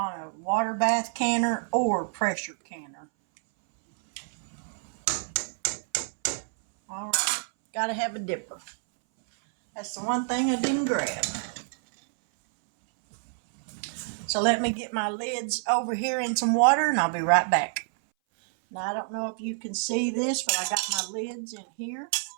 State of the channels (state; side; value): silent; left; 60 dB below the other